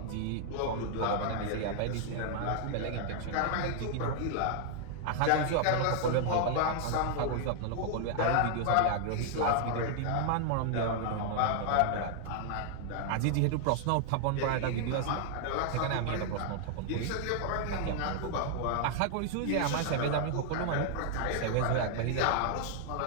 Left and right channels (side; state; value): both; different; correlation 0.00